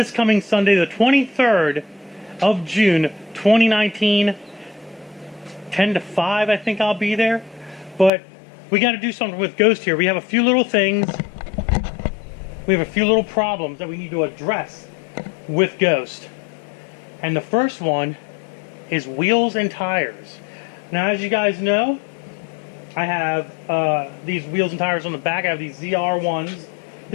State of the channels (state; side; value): drops out; right; at 8.1 s